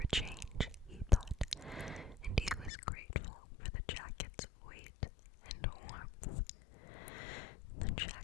change, he thought, and he was grateful for the jacket's weight and warmth. The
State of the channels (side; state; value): right; drops out; at 2.7 s